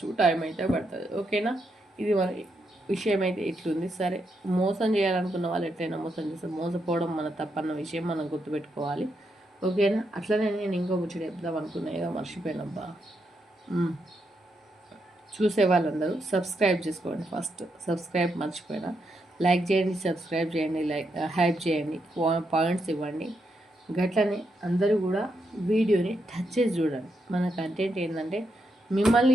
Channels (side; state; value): both; normal; correlation 0.81